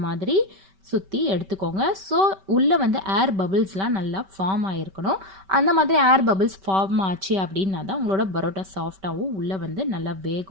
மாதிரி சுற்றி எடுத்துக்கோங்க. ஸோ உள்ளே வந்து ஏர் பபிள்ஸ்லாம் நல்லா ஃபார்ம் ஆகிருக்கணும். அந்த மாதிரி ஏர் பபிள்ஸ் ஃபார்ம் ஆச்சு அப்படின்னா தான் உங்களோட பரோட்டா சாஃப்டாகவும் உள்ளே வந்து நல்லா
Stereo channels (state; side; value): late; left; 5.2 ms